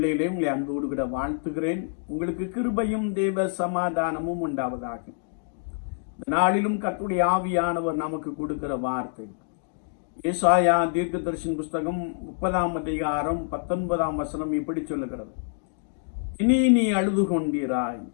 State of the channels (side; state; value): right; silent; digital silence